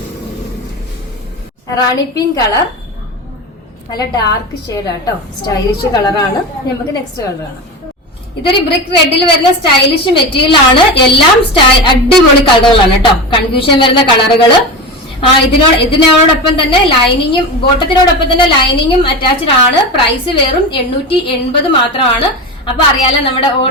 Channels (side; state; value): both; normal; correlation 0.24